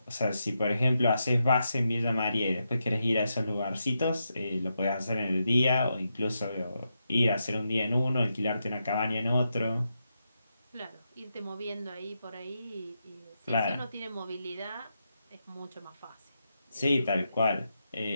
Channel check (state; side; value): inverted; both; correlation -0.85